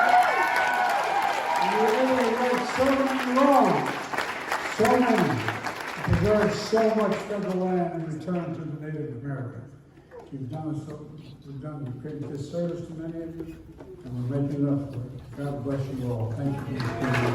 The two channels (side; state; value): both; identical; correlation 1.00